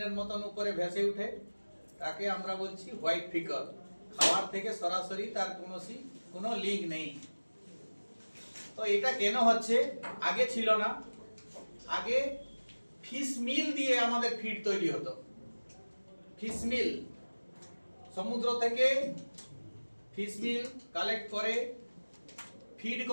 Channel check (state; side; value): inverted; both; correlation -1.00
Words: মতন উপরে ভেসে উঠে, তাকে আমরা বলছি হোয়াইট ফিকল। খাবার থেকে সরাসরি তার কোনো লিঙ্ক নেই। তো এটা কেন হচ্ছে? আগে ছিল না। আগে ফিশ মিল দিয়ে আমাদের ফিড তৈরি হতো। ফিশ মিল, সমুদ্র থেকে ফিশ মিল কালেক্ট করে ফিড